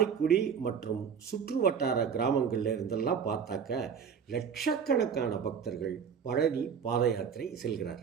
மற்றும் சுற்று வட்டார கிராமங்களில் இருந்தெல்லாம் பார்த்தாக்க லட்சக்கணக்கான பக்தர்கள் பழனி பாத யாத்திரை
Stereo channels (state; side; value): quieter; left; 7.0 dB